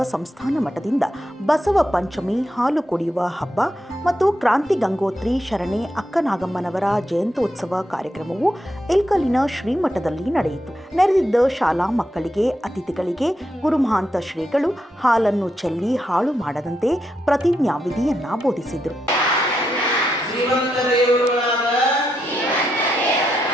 ಸಂಸ್ಥಾನ ಮಠದಿಂದ ಬಸವ ಪಂಚಮಿ ಹಾಲು ಕುಡಿಯುವ ಹಬ್ಬ ಮತ್ತು ಕ್ರಾಂತಿ ಗಂಗೋತ್ರಿ ಶರಣೆ ಅಕ್ಕನಾಗಮ್ಮನವರ ಜಯಂತ್ಯೋತ್ಸವ ಕಾರ್ಯಕ್ರಮವು ಇಲ್ಕಲಿನ ಶ್ರೀಮಠದಲ್ಲಿ ನಡೆಯಿತು. ನೆರೆದಿದ್ದ ಶಾಲಾ ಮಕ್ಕಳಿಗೆ, ಅತಿಥಿಗಳಿಗೆ ಗುರುಮಹಾಂತ ಶ್ರೀಗಳು ಹಾಲನ್ನು ಚೆಲ್ಲಿ ಹಾಳು ಮಾಡದಂತೆ ಪ್ರತಿಜ್ಞಾವಿಧಿಯನ್ನ ಬೋಧಿಸಿದರು.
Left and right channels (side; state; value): both; normal; correlation 0.82